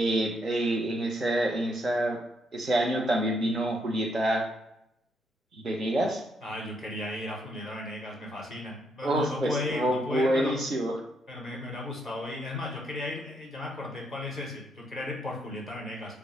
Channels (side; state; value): both; normal; correlation 0.75